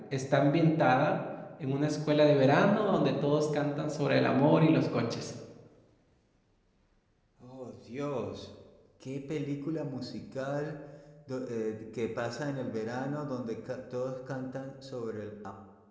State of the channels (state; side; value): identical; both; correlation 1.00